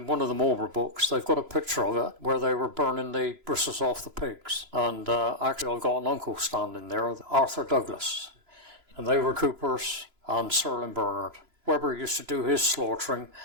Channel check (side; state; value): left; late; 3.0 ms